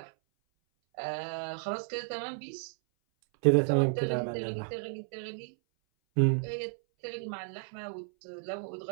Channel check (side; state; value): left; silent; 56 dB below the other